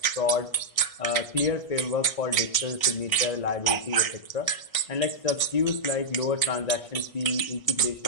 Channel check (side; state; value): right; late; 1.6 ms